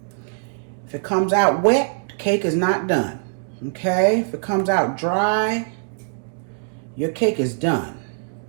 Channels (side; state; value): left; silent; digital silence